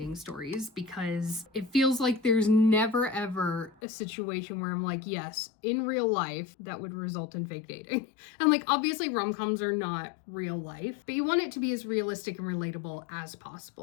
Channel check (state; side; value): drops out; right; at 3.7 s